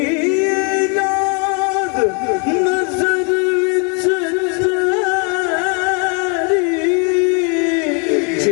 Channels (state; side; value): quieter; right; 36.1 dB